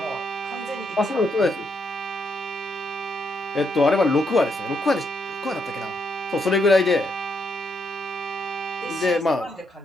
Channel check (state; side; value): normal; both; correlation 0.78